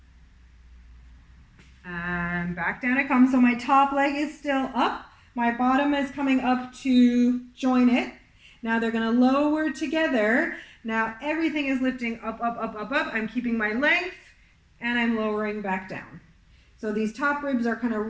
And back down it comes. So my top leg is still up. My bottom is coming up to join it. Now they're going to lower together. Now everything is lifting up. I'm keeping my length and I'm lowering back down. So these top ribs are kind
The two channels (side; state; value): both; identical; correlation 1.00